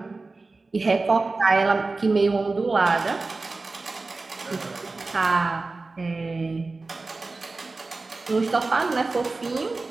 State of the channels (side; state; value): left; quieter; 3.6 dB